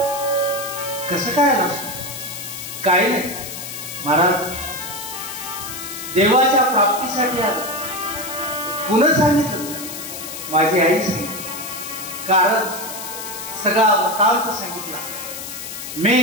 कसं काय आलं? काही नाही महाराज, देवाच्या प्राप्तीसाठी आलं. पुन्हा सांगितलं माझी आई सांगितलं, कारण सगळा वृत्तांत सांगितला. मी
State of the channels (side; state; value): left; noise; hiss, 9 dB below the sound